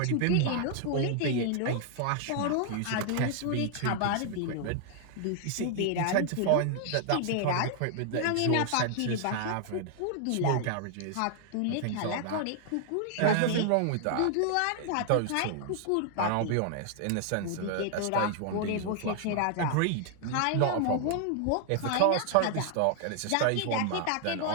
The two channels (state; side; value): different; both; correlation 0.00